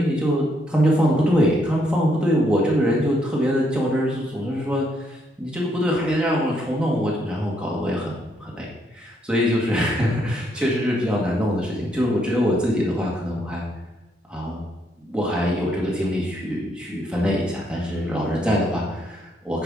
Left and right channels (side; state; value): both; normal; correlation 0.74